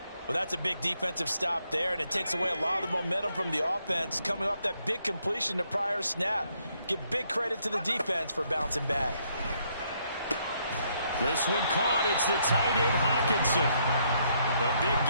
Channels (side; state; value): both; inverted; correlation -0.72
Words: Well, that's a big defensive stop there, and it takes away a lot of the momentum from the offense coming off that big completion the prior snap. Give big credit to the defense for bouncing back. This one caught. It's the tight end, Hockenson. A big